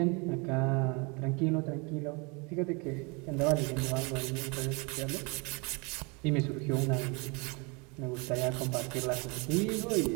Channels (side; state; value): left; quieter; 30.7 dB